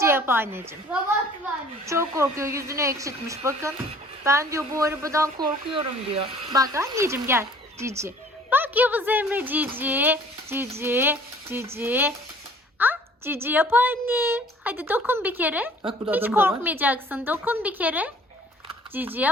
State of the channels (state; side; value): normal; both; correlation 0.53